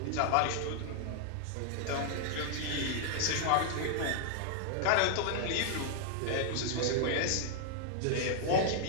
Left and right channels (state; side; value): different; both; correlation 0.00